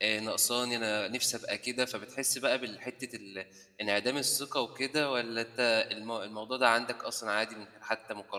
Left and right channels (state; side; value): identical; both; correlation 1.00